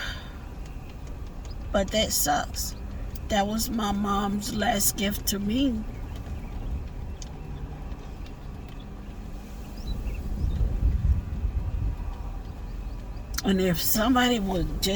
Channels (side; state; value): both; identical; correlation 1.00